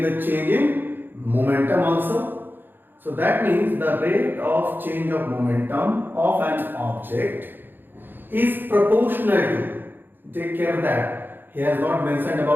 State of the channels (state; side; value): late; left; 0.095 ms